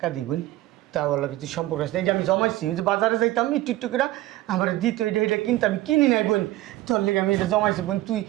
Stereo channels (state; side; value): quieter; left; 16.4 dB